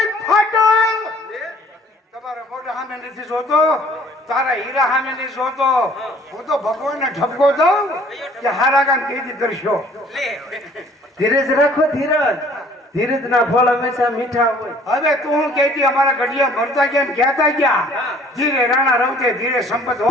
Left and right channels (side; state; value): both; normal; correlation 0.55